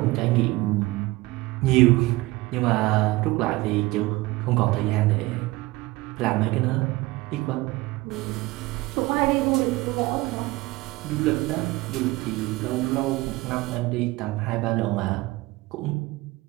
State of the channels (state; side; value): quieter; left; 20.6 dB